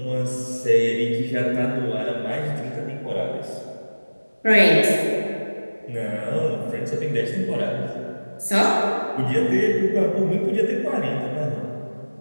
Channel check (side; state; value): both; inverted; correlation -1.00